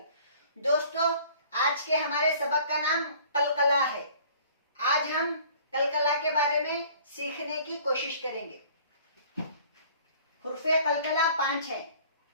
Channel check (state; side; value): inverted; both; correlation -0.52